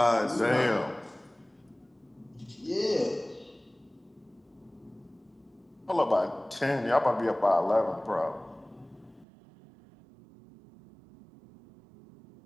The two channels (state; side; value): drops out; left; at 9.2 s